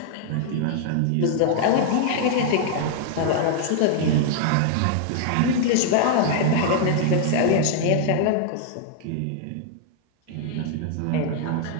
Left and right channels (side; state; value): both; different; correlation -0.01